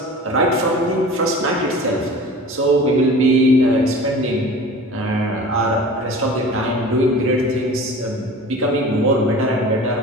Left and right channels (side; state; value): both; normal; correlation 0.39